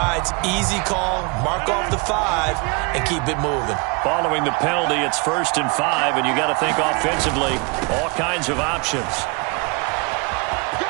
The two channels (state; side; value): quieter; left; 30.9 dB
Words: easy call, mark off the 5, and keep it moving. Following the penalty, it's 1st and 5, and you got to think offensively, all kinds of options.